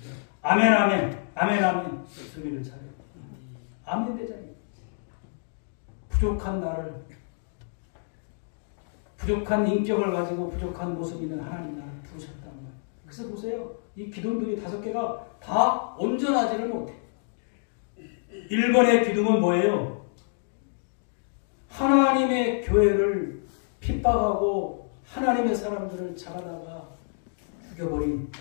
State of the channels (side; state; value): right; silent; digital silence